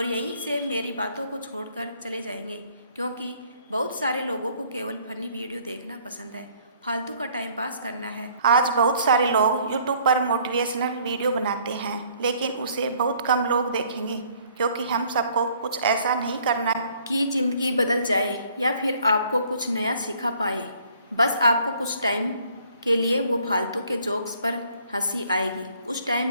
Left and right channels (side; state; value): both; inverted; correlation -0.61